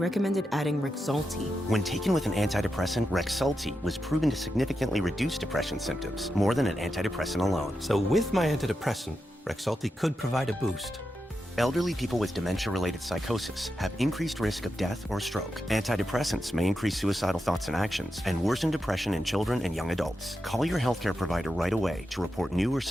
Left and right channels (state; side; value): normal; both; correlation 0.88